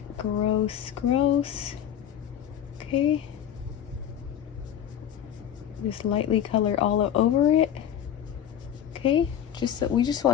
Gross, gross. Okay, just lightly color all over it. Okay, we just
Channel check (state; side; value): quieter; right; 9.8 dB